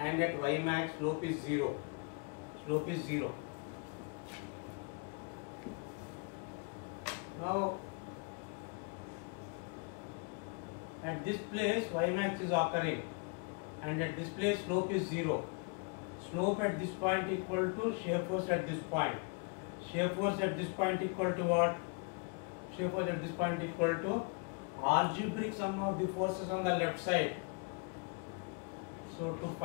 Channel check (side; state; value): right; quieter; 31.8 dB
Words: at Y max slope is 0. Slope is 0. Now at this place Y max is occurring, and at this place slope is 0. Slope at this point equal to shear force at this point. Shear force at this point equal to what? Shear force at this point equal to algebraic sum of the forces on the left side. So to